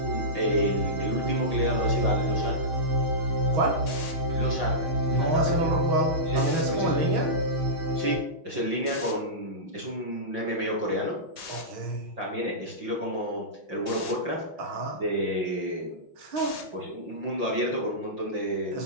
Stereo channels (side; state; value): left; late; 5.8 ms